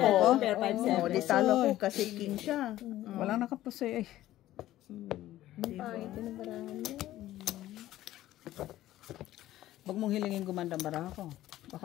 ko? Pair 5-7. Oo, di talo ko kasi king siya. Walang nakapusoy eh. Pangit yung barahan niya. Huwag mong hilingin gumanda ang baraha ko. Baka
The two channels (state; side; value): quieter; right; 14.5 dB